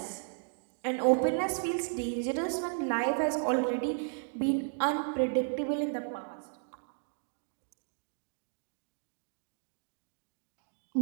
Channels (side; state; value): left; silent; digital silence